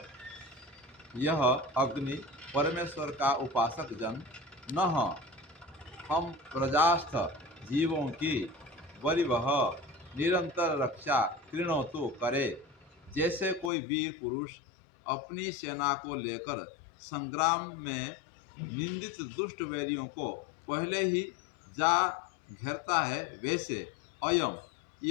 यह अग्नि परमेश्वर का उपासक जन न हम प्रजास्थ जीवों की वरिवह निरंतर रक्षा कृणो तो करे। जैसे कोई वीर पुरुष अपनी सेना को लेकर संग्राम में निंदित दुष्ट वैरियों को पहले ही जा घेरता है, वैसे अयम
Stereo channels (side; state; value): right; drops out; at 13.7 s